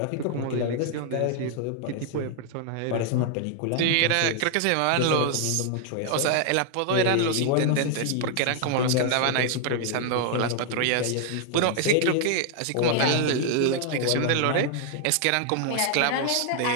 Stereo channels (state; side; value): different; both; correlation 0.00